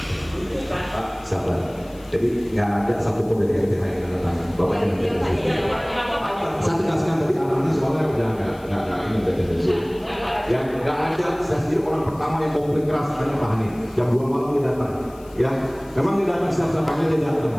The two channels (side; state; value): left; noise; hiss, 26 dB below the sound